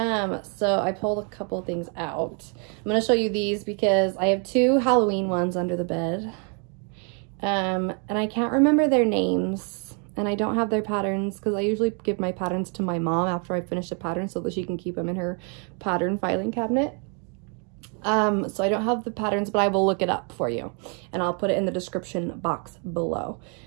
I pulled a couple things out. I'm going to show you these because I have 2 Halloween ones under the bed. And I can't remember their names and I don't have their patterns because I usually give my patterns to my mom after I finish a pattern so that she can keep them in her pattern filing cabinet. So I don't have the patterns, but I will look it up for you and I'll put it in the description box below.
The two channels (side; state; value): left; quieter; 38.4 dB